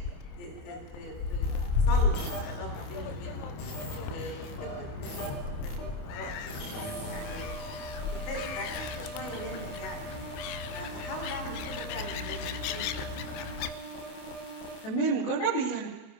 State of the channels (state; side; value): late; right; 28 ms